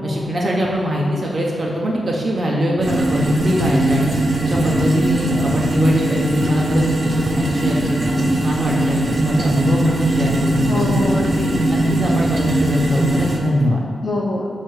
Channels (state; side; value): normal; both; correlation 0.85